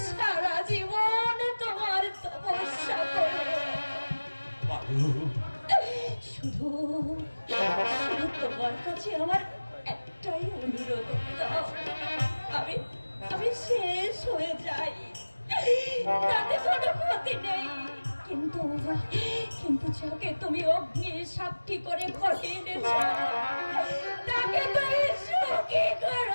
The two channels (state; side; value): inverted; both; correlation -1.00